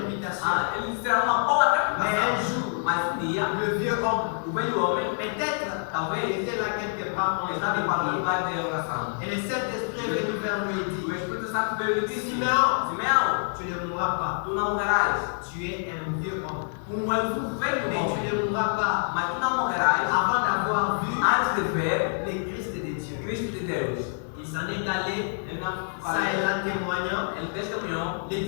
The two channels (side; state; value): right; silent; 55 dB below the other